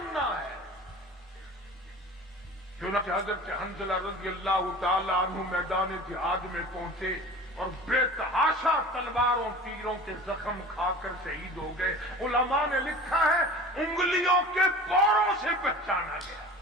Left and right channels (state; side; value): normal; both; correlation 0.39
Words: ہے. چنانچہ حضرت حنظلہ رضی اللہ تعالی عنہ میدان جہاد میں پہنچے اور بے تحاشا تلواروں تیروں کے زخم کھا کر شہید ہو گئے. علماء نے لکھا ہے انگلیوں کے پوروں سے پہچانا گیا.